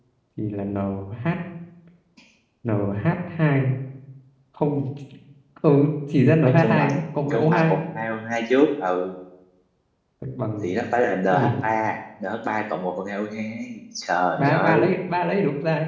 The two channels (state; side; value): identical; both; correlation 1.00